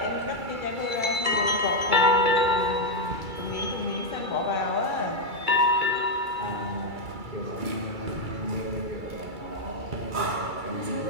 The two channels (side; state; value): left; late; 2.3 ms